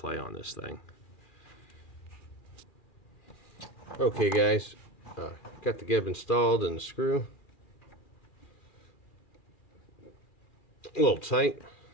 on this thing. Okay, guys. Got the gib installed and the screw. A little tight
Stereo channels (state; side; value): late; right; 2.4 ms